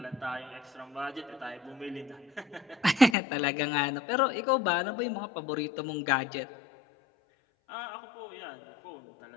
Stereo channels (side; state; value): right; drops out; at 3.2 s